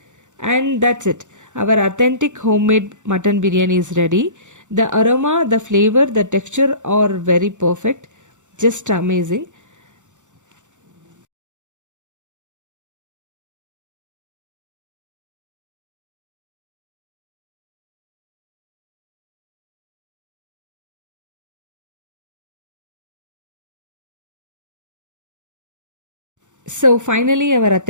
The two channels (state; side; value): late; left; 0.85 ms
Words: And that's it. Our authentic homemade mutton biryani is ready. The aroma, the flavor, the texture are very perfect. Just amazing. So finally, our